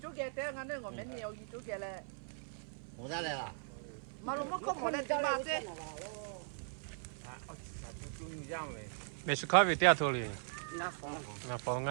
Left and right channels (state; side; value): silent; left; 52 dB below the other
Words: chú kia thế ngắn nữa, mình nhiều chú kia là. Không ra đây à? Mà lúc không có lên chơi mà chứ. mày sẽ khai về tia thôi liền. Ngã phồng